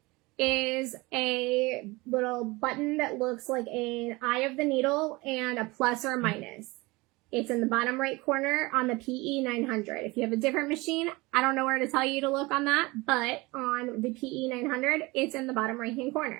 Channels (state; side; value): quieter; left; 23.2 dB